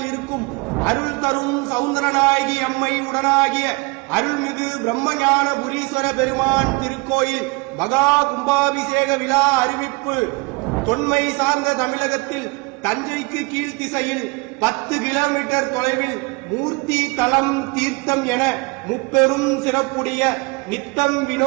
இருக்கும் அருள் தரும் சவுந்தரநாயகி அம்மை உடனாகிய அருள்மிகு பிரம்மஞான புரீஸ்வர பெருமான் திருக்கோயில் மகா கும்பாபிஷேக விழா அறிவிப்பு. தொன்மை சார்ந்த தமிழகத்தில் தஞ்சைக்கு கீழ்த்திசையில் 10 கிலோமீட்டர் தொலைவில் மூர்த்தி தலம் தீர்த்தம் என முப்பெரும் சிறப்புடைய நித்தம்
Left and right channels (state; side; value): quieter; left; 27.7 dB